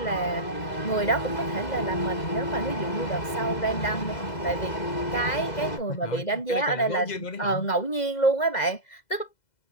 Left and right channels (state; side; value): late; right; 2.0 ms